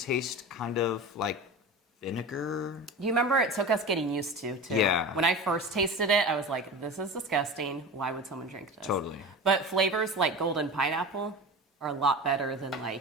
kind of like vinegar. You remember it took us getting used to, too. Yeah. When I first tasted it, I was like, this is disgusting. Why would someone drink this? Totally. But flavors like golden pineapple are a lot better than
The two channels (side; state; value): both; normal; correlation 0.30